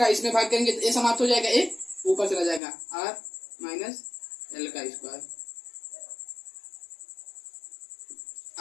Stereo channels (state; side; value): drops out; right; at 2.6 s